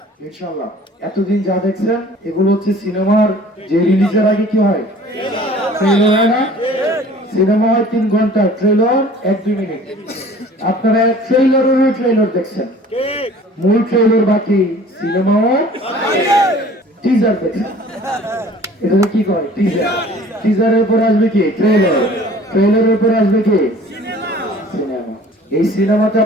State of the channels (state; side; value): normal; both; correlation 0.49